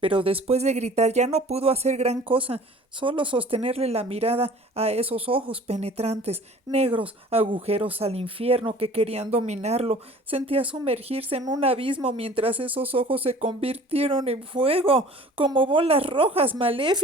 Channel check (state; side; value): normal; both; correlation 0.47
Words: después de gritar ya no pudo hacer gran cosa, solo sostenerle la mirada a esos ojos penetrantes, negros, agujeros al infierno que querían dominarlo. Sentía sumergirse en un abismo mientras esos ojos se convirtieron en fuego, como bolas rojas